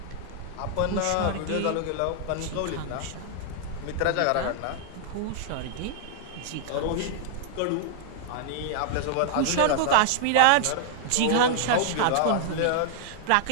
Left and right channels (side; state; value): both; different; correlation 0.00